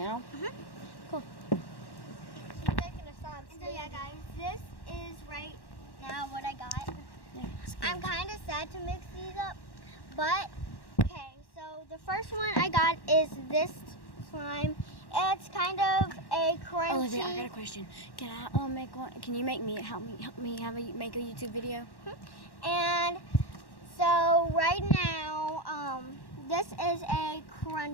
Cool. She's making a slime. And so yeah, guys, this is right now what I got. Yeah, I'm kind of sad to mix these up, but okay. So the first one I got is this slime. It's kind of a crunchy. Olivia, I got a question. Can I make one? Can you make me help me make a YouTube video? And so right now, this is a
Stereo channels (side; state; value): right; late; 1.1 ms